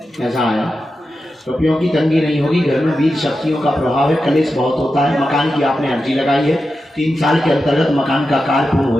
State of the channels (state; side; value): normal; both; correlation 0.90